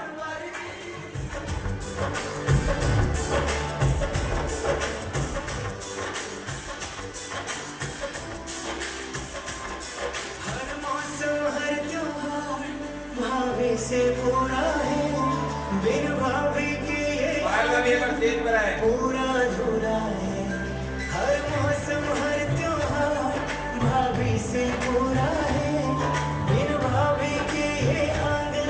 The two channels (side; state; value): both; identical; correlation 1.00